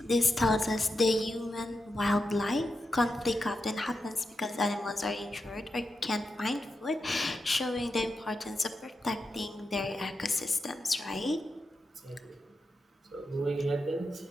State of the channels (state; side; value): normal; both; correlation 0.88